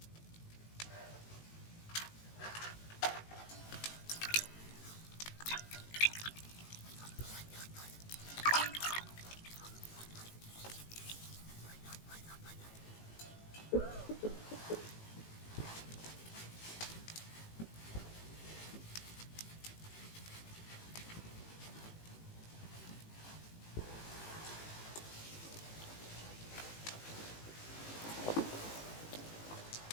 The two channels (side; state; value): right; late; 18 ms